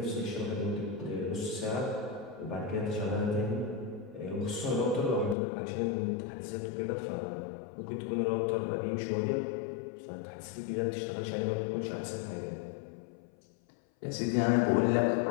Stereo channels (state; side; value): drops out; right; at 5.4 s